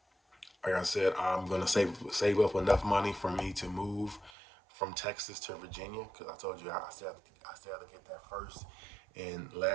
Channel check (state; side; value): drops out; left; at 4.3 s